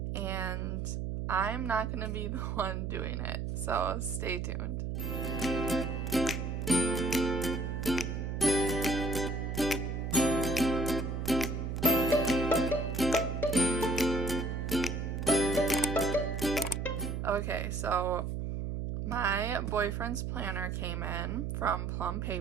and I'm not going to be the one doing it, so stay tuned. Okay, so my boyfriend's planner came in from Plum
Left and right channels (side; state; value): right; noise; hum, 3 dB below the sound